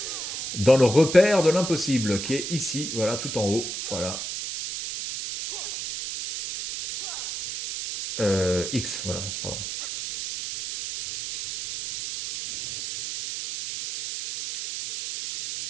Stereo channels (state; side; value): noise; right; hiss, 6 dB below the sound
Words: dans le repère de l'impossible, qui est ici, voilà, tout en haut, voilà. X, voilà, pardon.